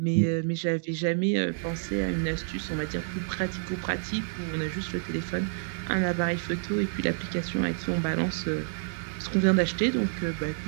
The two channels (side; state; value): left; silent; digital silence